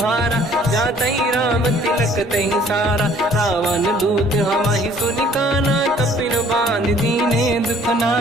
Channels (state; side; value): normal; both; correlation 0.57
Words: जातहि राम तिलक तहि सारा, रावण दूत हमहि सुनि काना, कपिन बांध दीने दुख